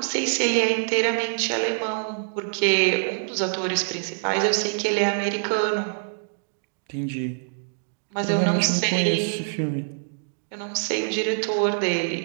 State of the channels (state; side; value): silent; left; digital silence